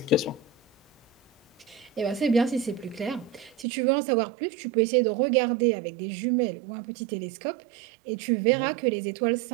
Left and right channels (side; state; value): left; drops out; at 3.7 s